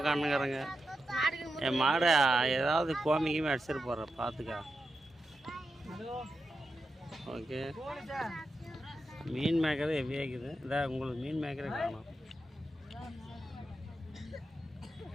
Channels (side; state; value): both; normal; correlation 0.88